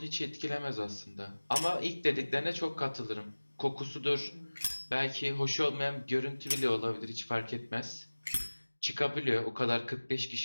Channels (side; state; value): both; inverted; correlation -1.00